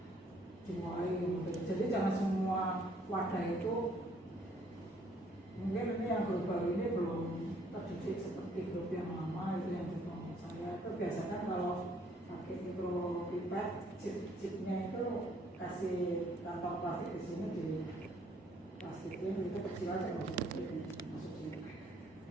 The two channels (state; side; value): normal; both; correlation 0.64